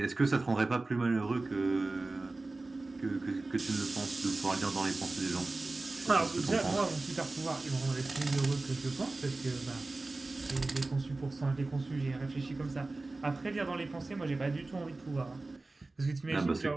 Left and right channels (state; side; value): quieter; left; 3.2 dB